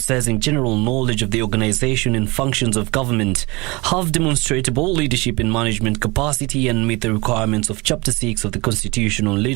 general knowledge of the organization and functions of government, have demonstrable leadership and management capacity, and meet the requirements of Chapter 6 of the Constitution on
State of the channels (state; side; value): quieter; left; 25.1 dB